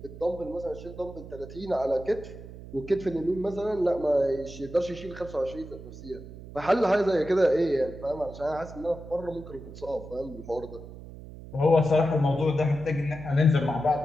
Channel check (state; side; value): noise; right; hum, 14 dB below the sound